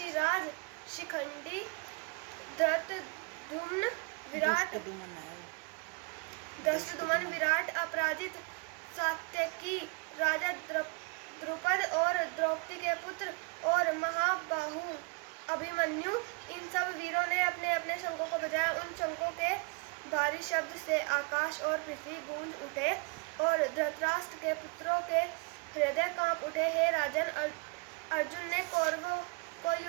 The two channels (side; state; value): left; quieter; 32.3 dB